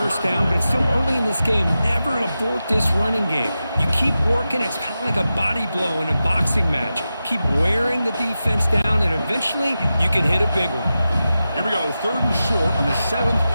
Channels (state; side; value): inverted; both; correlation -0.92